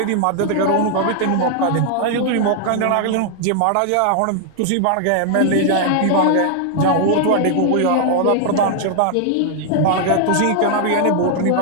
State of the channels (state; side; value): different; both; correlation 0.00